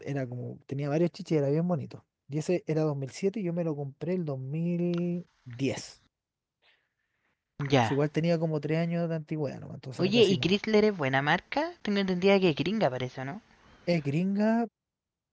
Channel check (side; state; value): both; identical; correlation 1.00